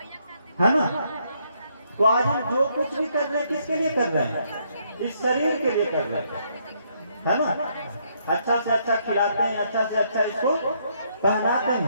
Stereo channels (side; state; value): both; inverted; correlation -0.72